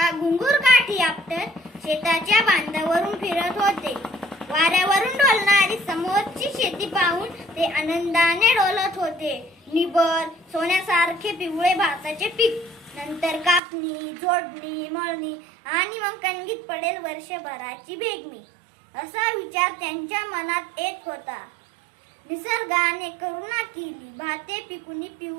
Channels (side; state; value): left; drops out; at 13.6 s